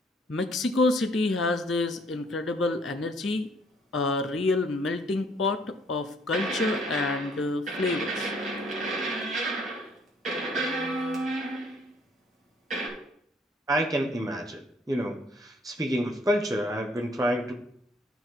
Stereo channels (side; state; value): both; normal; correlation 0.62